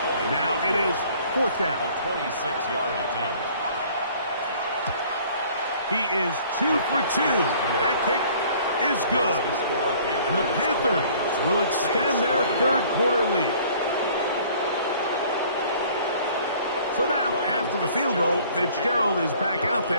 And now it is fourth down. A 26-yard attempt. He is 2 for 2. That kick is good. And the Panthers will extend their third quarter lead. So now, after the field goal, Fitzgerald is back out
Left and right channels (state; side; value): inverted; both; correlation -0.54